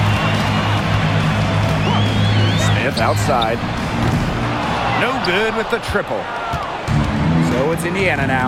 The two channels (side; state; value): both; identical; correlation 1.00